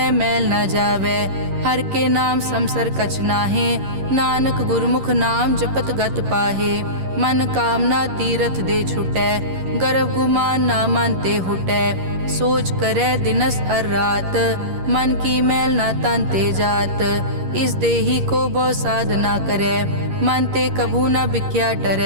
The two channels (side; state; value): left; late; 11 ms